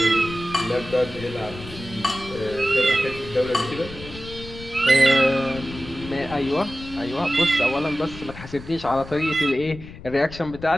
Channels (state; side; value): noise; left; rumble, 15 dB below the sound